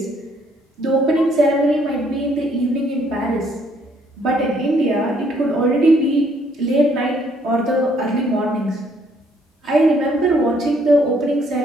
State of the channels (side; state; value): both; normal; correlation 0.66